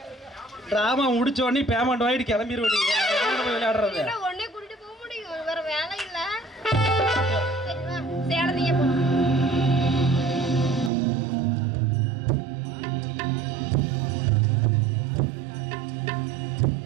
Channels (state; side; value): drops out; left; at 10.9 s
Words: டிராமா முடிச்ச உடனே பேமெண்ட் வாங்கிட்டு கிளம்பிடுவோம். விளையாடுறது இன்னும் ஒண்ணே கூட்டிட்டு போக முடியும், வேற வேலை இல்ல. சரி வா, சேலத்தையே போ.